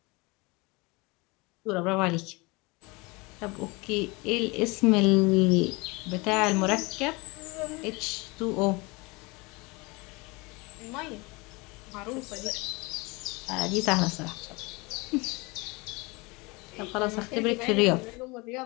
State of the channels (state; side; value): quieter; right; 25.9 dB